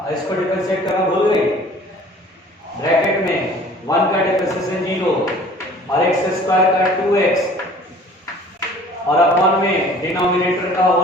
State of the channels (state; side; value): normal; both; correlation 0.49